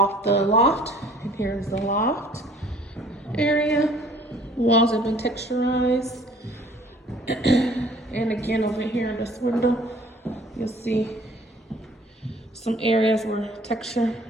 the loft. And here's the loft area. Walls have been texturized. And again, over here in this window, you'll see some areas where texture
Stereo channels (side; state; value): both; normal; correlation 0.54